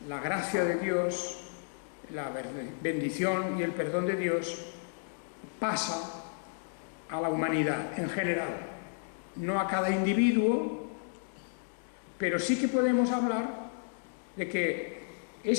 la gracia de Dios, la bendición y el perdón de Dios pasa a la humanidad en general, no a cada individuo, pero sí que podemos hablar de que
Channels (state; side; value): silent; right; digital silence